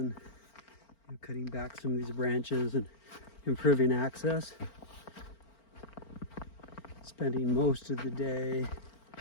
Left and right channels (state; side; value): late; right; 4.4 ms